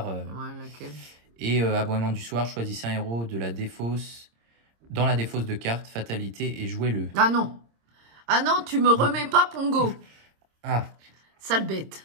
Ouais, laquelle? Et Aboiement du soir, choisissez un héros de la défausse, dans la défausse de carte, fatalité, et jouez-le. Ah non. Ah non, tu me remets pas Pongo. Ah. Sale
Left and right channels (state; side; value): late; left; 26 ms